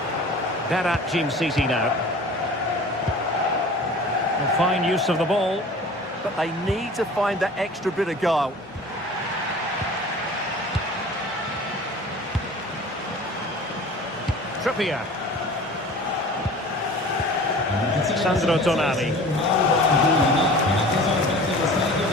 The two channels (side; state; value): both; normal; correlation 0.42